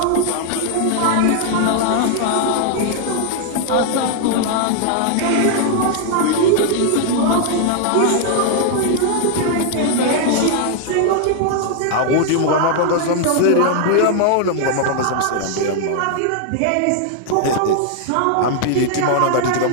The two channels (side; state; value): both; different; correlation 0.00